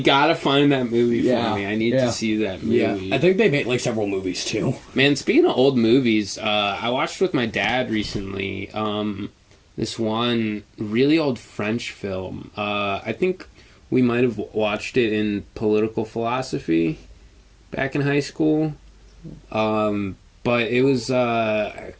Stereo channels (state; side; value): identical; both; correlation 1.00